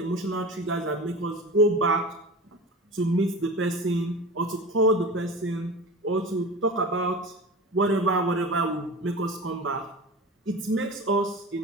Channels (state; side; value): normal; both; correlation 0.32